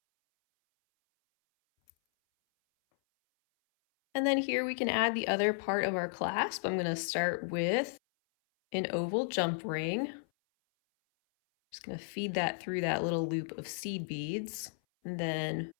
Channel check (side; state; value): right; silent; 55 dB below the other